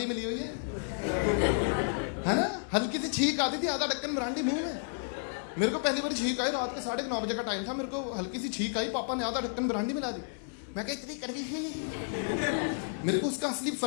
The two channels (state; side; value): silent; right; 57 dB below the other